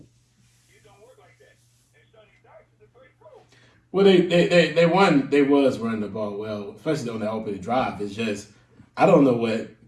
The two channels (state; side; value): identical; both; correlation 1.00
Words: Well, they won. They was running the ball well, especially on the opening drive. It's just I don't know what.